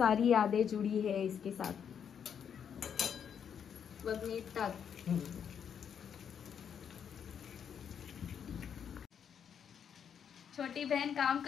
यादें जुड़ी है इसके साथ. बघ मीठ टाक. छोटी बहन काम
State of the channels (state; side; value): quieter; right; 7.9 dB